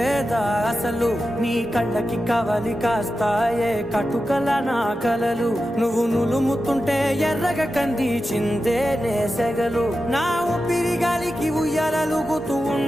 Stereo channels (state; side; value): normal; both; correlation 0.91